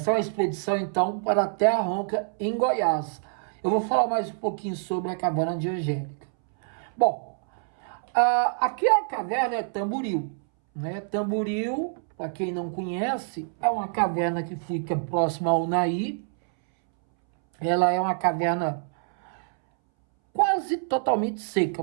é uma expedição, então, para a Terra Ronca, em Goiás. Eu vou falar mais um pouquinho sobre a caverna de Angélica. Bom, aqui a caverna é Tamboril, né? Tamboril, para quem não conhece, é uma caverna que fica próxima ao Unaí. Ela é uma caverna quase totalmente seca,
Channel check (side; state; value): left; silent; 61 dB below the other